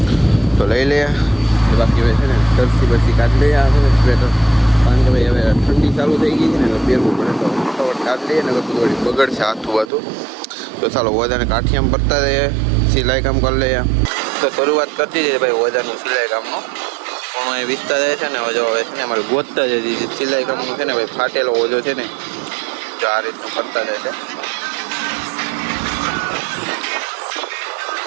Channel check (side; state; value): left; drops out; at 9.9 s